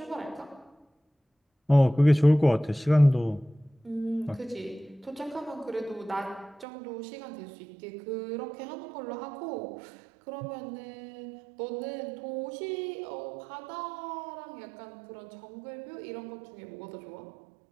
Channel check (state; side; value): drops out; left; at 6.7 s